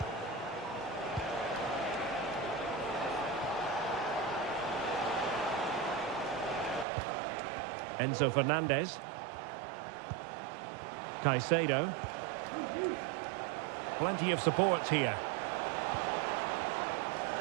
Enzo Fernandez. Caicedo. Plenty of support here.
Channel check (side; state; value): left; drops out; at 6.9 s